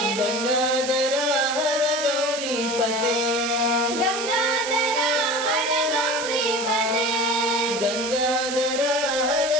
గంగాధర హర గౌరీపతే, గంగాధర హర గౌరీపతే, గంగాధర హర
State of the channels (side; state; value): right; noise; hiss, 7 dB below the sound